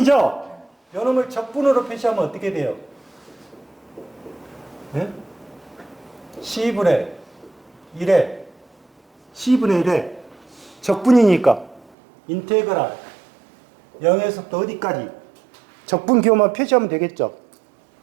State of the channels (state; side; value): drops out; left; at 12.0 s